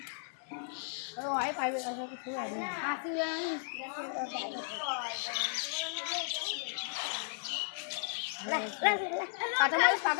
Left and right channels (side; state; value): right; silent; digital silence